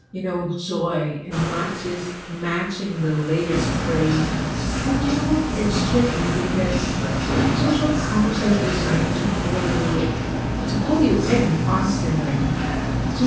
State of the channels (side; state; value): both; identical; correlation 1.00